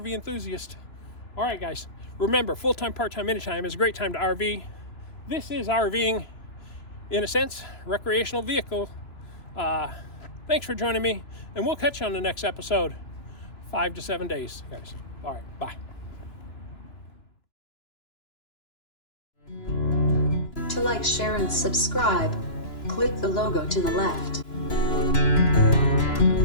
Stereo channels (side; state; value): right; late; 2.9 ms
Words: enthusiast. All right, guys, remember, full-time, part-time, anytime is a great time to RV. This is RVing, in a sense, recreational vehicle. Thanks for joining me, and we'll catch you on the next episode. 5 to 7 days, guys. All right, bye. To like, share, and subscribe, click the logo to the left.